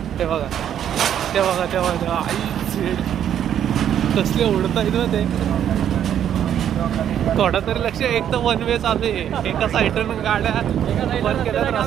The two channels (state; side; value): quieter; left; 9.8 dB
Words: ते बघा ते बघा ते बघा आई झेड कसले उडतायत ना ते. थोडं तरी लक्ष. एक तर वन वे चालू आहे. एका साईडनं गाड्या बंद केल्या तर